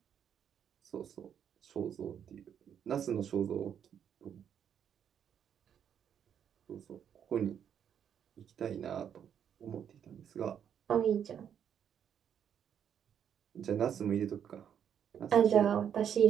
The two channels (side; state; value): left; quieter; 8.7 dB